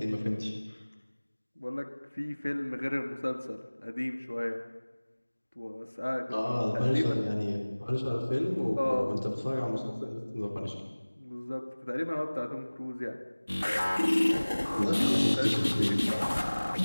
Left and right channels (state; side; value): inverted; both; correlation -1.00